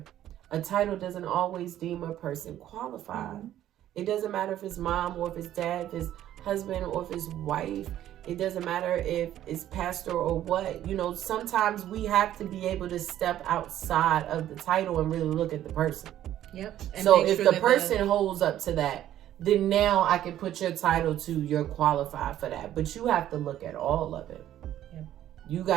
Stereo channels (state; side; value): quieter; left; 12.2 dB